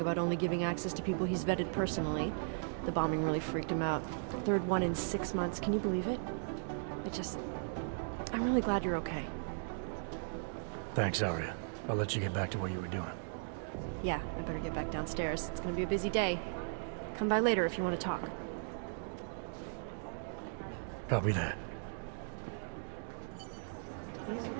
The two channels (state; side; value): silent; left; digital silence